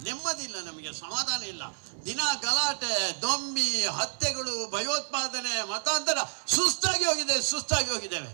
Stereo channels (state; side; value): silent; left; 58 dB below the other